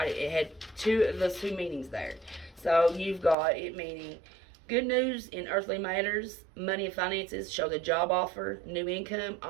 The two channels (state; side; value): drops out; left; at 3.4 s